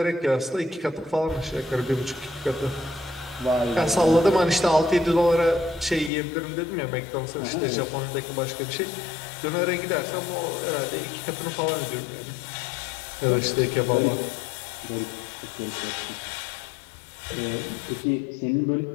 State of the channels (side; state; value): right; drops out; at 6.1 s